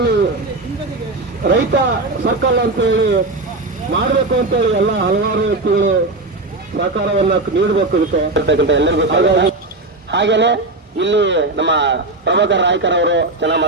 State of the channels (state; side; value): quieter; left; 3.0 dB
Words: ರೈತ ಸರ್ಕಲ್ ಅಂತ ಹೇಳಿ ಮಾಡಬೇಕು ಅಂತ ಹೇಳಿ ಎಲ್ಲ ಹಲವಾರು ವ್ಯಕ್ತಿಗಳು ಸಹಕಾರವನ್ನ ನೀಡಬೇಕು ಇದಕ್ಕೆ ಎಲ್ಲರಿಗೂ. ಹಾಗೇನೆ ಇಲ್ಲಿ ನಮ್ಮ ಪ್ರಭಾಕರ್ ನಾಯ್ಕರ್ ಅವರು ಚೆನ್ನಾಗಿ